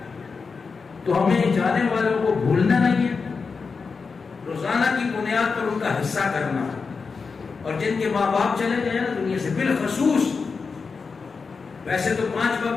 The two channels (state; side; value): quieter; right; 4.9 dB